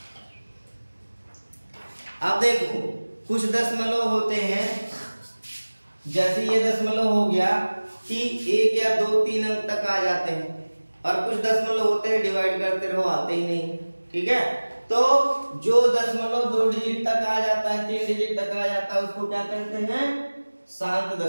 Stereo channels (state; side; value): inverted; both; correlation -1.00